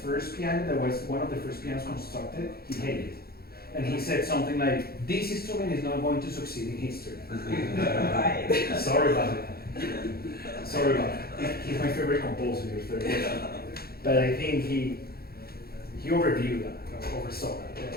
piano, that was one of the first pianos constructed, he hated it. And he said something like, this instrument is not going to succeed in history. Sorry about it. Sorry about it. He's my favorite composer, your third question. But I think he overviewed that, oversaw that.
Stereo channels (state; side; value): late; right; 0.45 ms